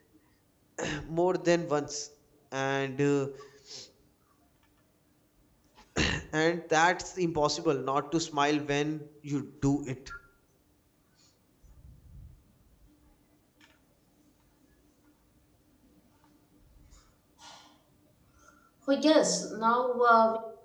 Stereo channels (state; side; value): identical; both; correlation 1.00